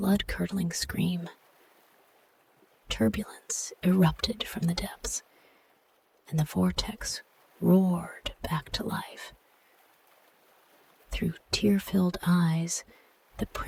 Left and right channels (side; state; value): both; identical; correlation 1.00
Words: scream. Turbulence erupted from the depths, and the vortex roared back to life. Through tear-filled eyes, the